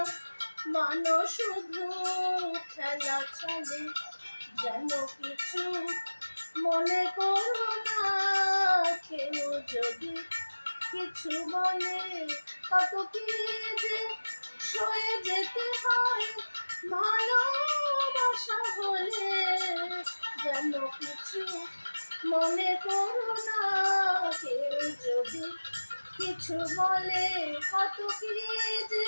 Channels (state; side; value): inverted; both; correlation -1.00